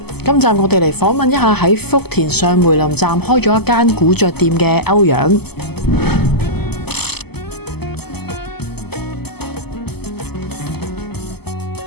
今集我哋嚟訪問一下喺福田上梅林站開咗一間古着店嘅歐陽。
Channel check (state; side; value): late; right; 0.97 ms